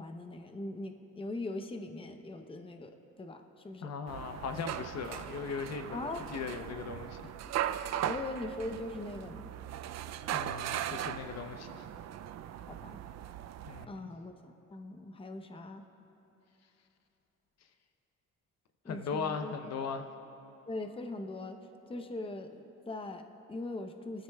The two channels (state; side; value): normal; both; correlation 0.23